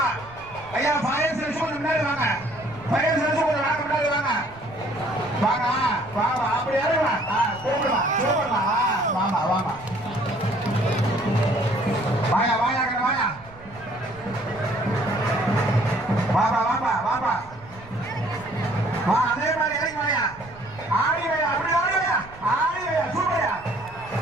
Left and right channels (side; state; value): right; noise; rumble, 21 dB below the sound